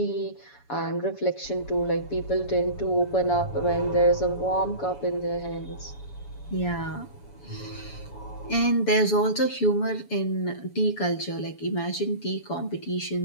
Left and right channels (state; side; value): late; right; 7.0 ms